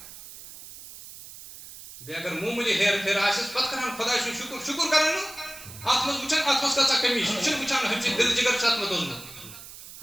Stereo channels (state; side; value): noise; right; hiss, 15 dB below the sound